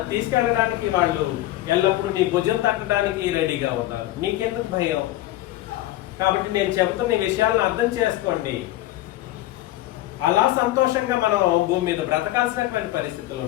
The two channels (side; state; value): right; quieter; 15.7 dB